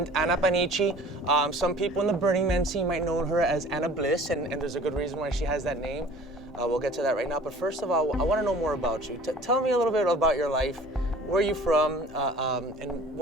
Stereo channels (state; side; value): normal; both; correlation 0.47